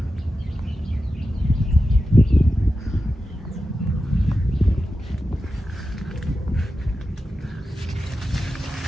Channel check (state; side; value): normal; both; correlation 0.91